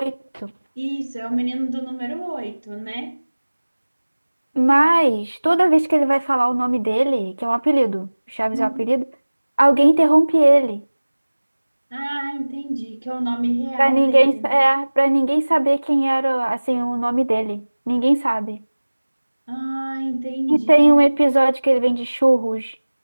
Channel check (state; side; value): inverted; both; correlation -1.00